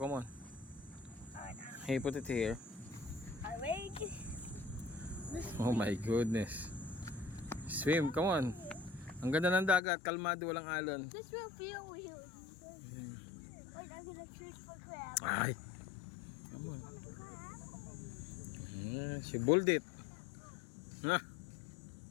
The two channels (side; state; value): right; drops out; at 9.8 s